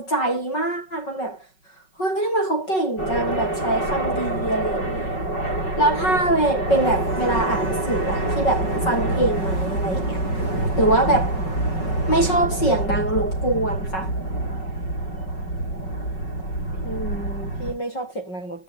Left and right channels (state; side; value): late; right; 5.4 ms